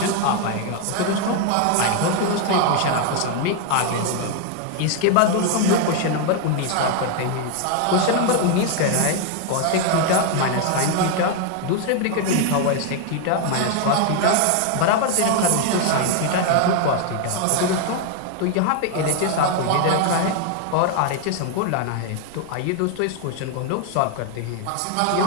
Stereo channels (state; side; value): different; both; correlation 0.00